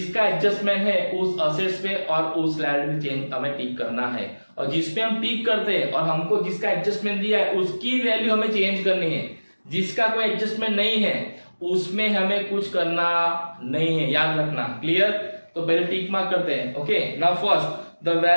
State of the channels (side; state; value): both; inverted; correlation -1.00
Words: एडजस्टमेंट है उस असेट्स पे और उस लायबिलिटी चेंज हमें टिक करना है, और जिस पे हम टिक करते हैं और हमको जिसका एडजस्टमेंट दिया है उसकी वैल्यू हमें चेंज करनी है. जिसका कोई एडजस्टमेंट नहीं है उसमें हमें कुछ करना नहीं है, याद रखना. क्लियर? तो पहले टिक मार्क करते हैं. Okay, now first the